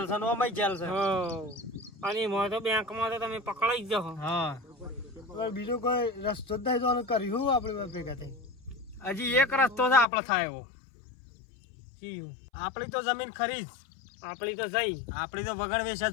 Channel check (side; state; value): right; drops out; at 10.1 s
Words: છે ને ઓમાંય જેલ છે. અને એમાં તો બેંકમાં તો તમે પકડાઈ જ જાઓ. હા હવે બીજો કોઈ રસ્તો જ નહીં તો કર્યું આપણે બે ભેગા થઈ. હજી એક રસ્તો છે આપણે થાય એવો. શીયું? આપણી તો જમીન ખરી જ. આપણી તો જઈ. આપણી તો વગણ વેચ